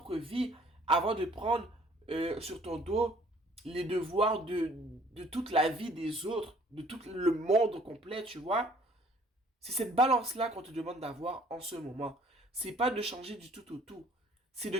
vie avant de prendre sur ton dos les devoirs de toute la vie des autres, de tout le monde complet, tu vois. C'est cette balance-là qu'on te demande d'avoir en ce moment. C'est pas de changer du tout au tout. C'est de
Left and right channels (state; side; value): normal; both; correlation 0.57